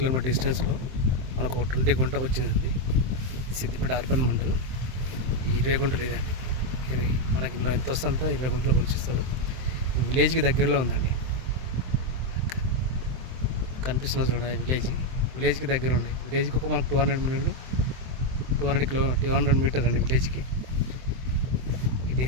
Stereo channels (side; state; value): left; late; 23 ms